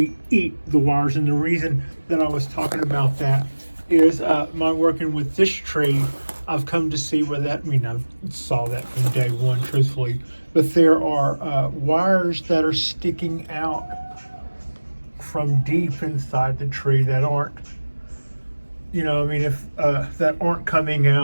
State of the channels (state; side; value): inverted; both; correlation -1.00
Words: eat the wires. And the reason that I was talking about that is my working with this tree, I've come to see where that, I saw that from day one, truthfully, but there are wires that are sticking out from deep inside the tree that aren't, if that aren't coming